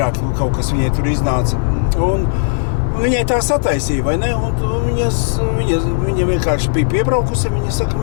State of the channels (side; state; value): right; silent; digital silence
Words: kaut kas viņai tur iznāca. Un viņai tā sataisīja, vai ne? Un viņa vienkārši bija piebraukusi, viņš